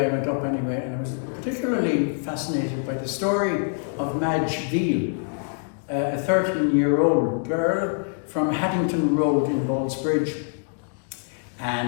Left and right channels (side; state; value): right; silent; 62 dB below the other